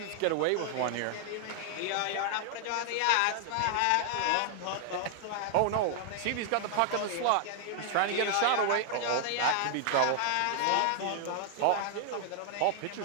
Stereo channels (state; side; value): different; both; correlation 0.00